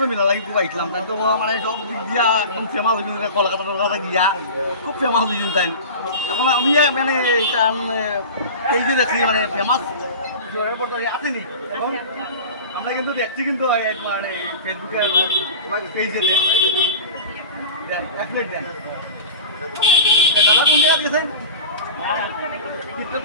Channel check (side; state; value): both; inverted; correlation -0.34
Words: মিলা লাগি খুব আইছিলাম তাই তো মানে সব দিক দিয়া একদম ফেমাস হয়েছিল কলকাতা গিয়া খুব ফেমাস হয়েছিল তাই এখন আমি মানে এটা এই যে দেখছি মানে ফেমাস জোরের পর আসেনি এখন আমরা কিন্তু দেখছি কিন্তু মানে ফেসবুকে পেজে এক প্লেট দেন দাদা কোন জায়গা দিয়েছেন